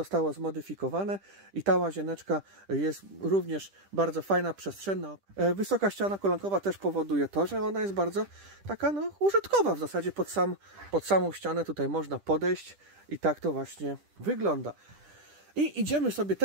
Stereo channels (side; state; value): left; late; 10 ms